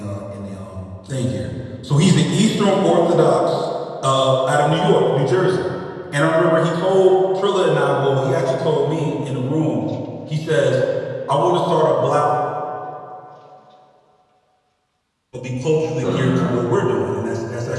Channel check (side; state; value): both; identical; correlation 1.00